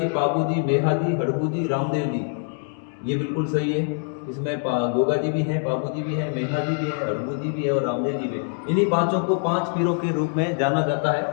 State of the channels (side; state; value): right; silent; 63 dB below the other